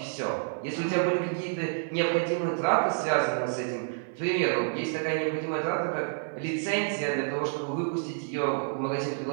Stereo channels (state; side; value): silent; left; 59 dB below the other